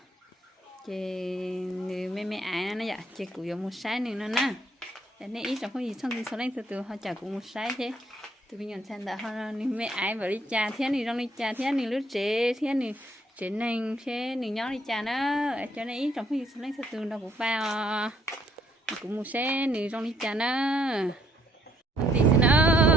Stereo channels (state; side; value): normal; both; correlation 0.68